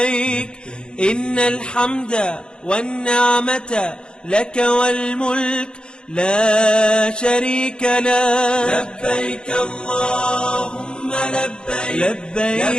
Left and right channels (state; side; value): late; right; 0.050 ms